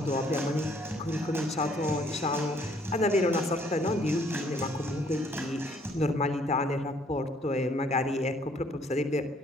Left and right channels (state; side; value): normal; both; correlation 0.63